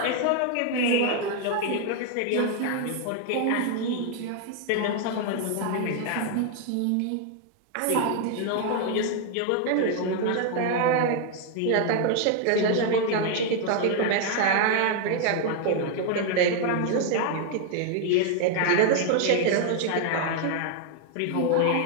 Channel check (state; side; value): different; both; correlation 0.00